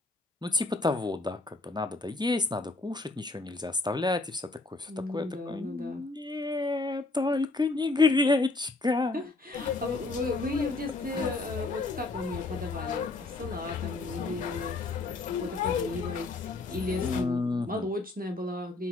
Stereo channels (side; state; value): right; quieter; 3.3 dB